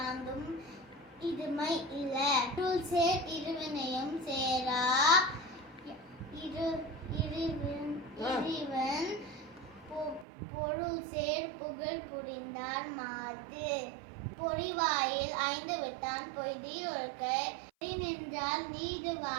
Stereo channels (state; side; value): drops out; left; at 10.2 s